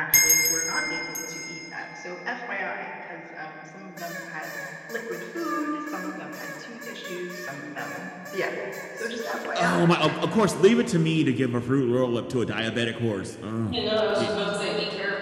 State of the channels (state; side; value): identical; both; correlation 1.00